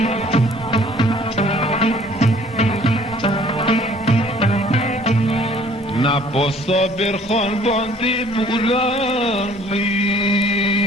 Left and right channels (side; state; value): both; normal; correlation 0.56